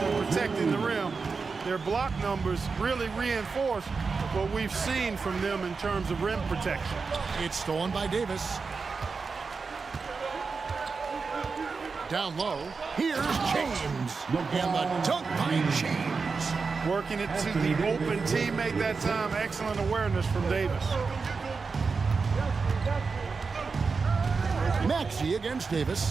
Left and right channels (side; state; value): left; quieter; 4.8 dB